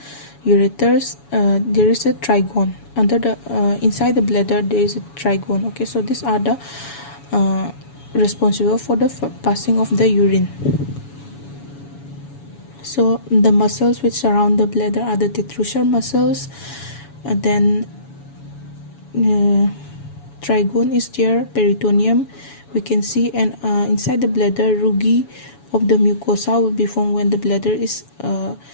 Ureters, there is a trigone under the inside the bladder. There is a trigone. Okay, so these are the responsible for the passing of the urine. So the muscles which surround the bladder are the detrusor muscles. Then trigone is there, peritoneum we can see, and inside the bladder rugae of the mucosa will be formed when the bladder is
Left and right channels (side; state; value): right; late; 7.1 ms